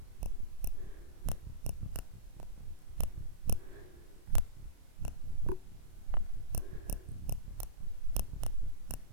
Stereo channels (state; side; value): late; left; 29 ms